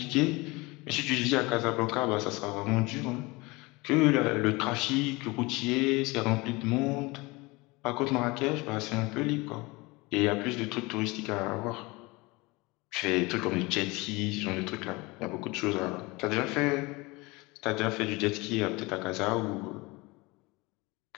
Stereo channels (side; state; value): right; quieter; 24.0 dB